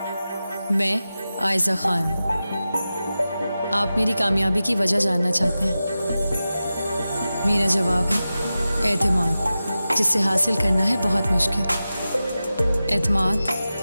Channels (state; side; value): inverted; both; correlation -0.94